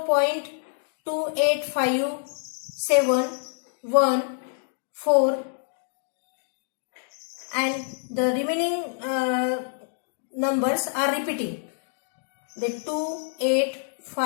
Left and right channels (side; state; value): right; silent; digital silence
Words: and the remaining numbers are repeating. The